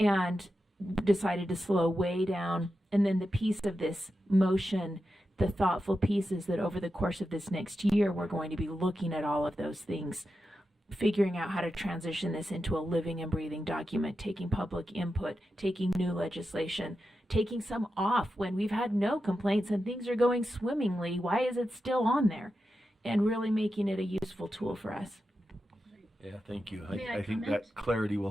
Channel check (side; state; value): both; normal; correlation 0.90